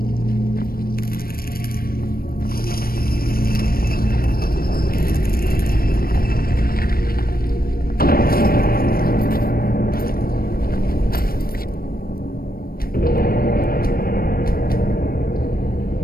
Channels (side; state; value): right; late; 0.43 ms